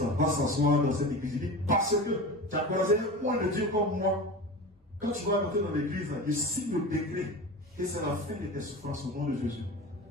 va s'asseoir dans cette église. Il dit parce que tu as croisé un point de Dieu comme moi. Quand tu vas rentrer dans l'église, il signe le décret. Et c'est la fin de tes souffrances au nom de Jésus.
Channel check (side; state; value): both; normal; correlation 0.30